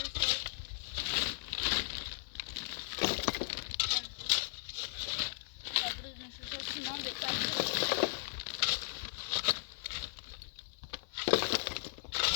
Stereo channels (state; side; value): silent; right; digital silence